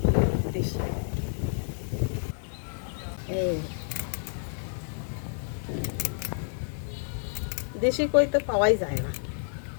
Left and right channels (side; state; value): right; silent; digital silence